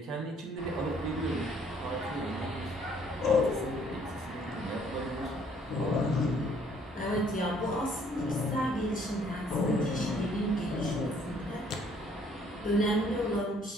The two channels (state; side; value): normal; both; correlation 0.62